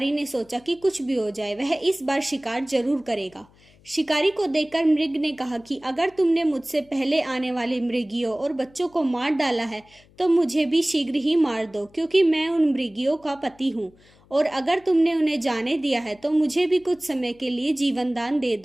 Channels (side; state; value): left; noise; hum, 29 dB below the sound